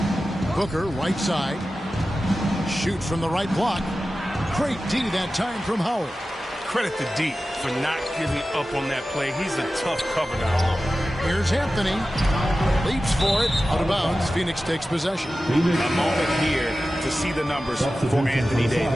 Booker, right side. Shoots from the right block. Great D that time from Howard. Credit to D for not giving up on that play. He's a tough cover now. Here's Anthony. Leaps for it. Out of bounds. Phoenix takes possession. A moment here to see the numbers for Anthony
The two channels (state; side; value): normal; both; correlation 0.94